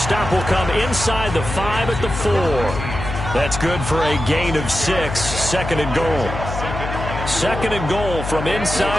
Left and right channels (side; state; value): left; noise; hum, 6 dB below the sound